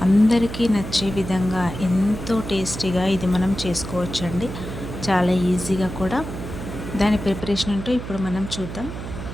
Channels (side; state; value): right; noise; hum, 8 dB below the sound